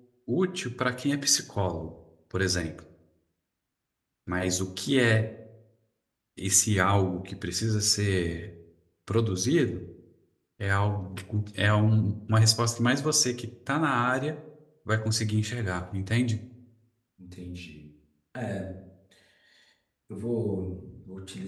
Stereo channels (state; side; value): identical; both; correlation 1.00